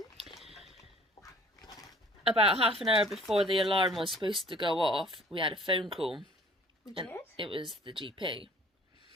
About half an hour before the alarm was supposed to go off, we had a phone call. We And did? it was the GP.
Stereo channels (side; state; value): both; normal; correlation 0.52